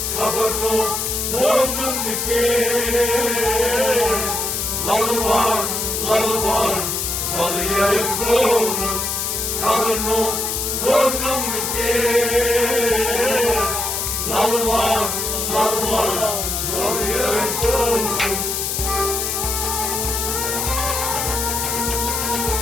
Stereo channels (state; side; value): noise; left; hiss, 1 dB below the sound